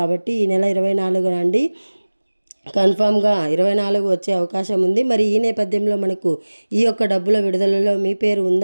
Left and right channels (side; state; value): both; inverted; correlation -1.00